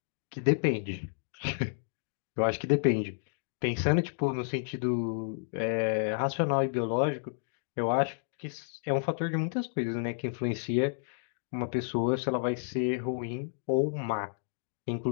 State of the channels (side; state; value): right; silent; digital silence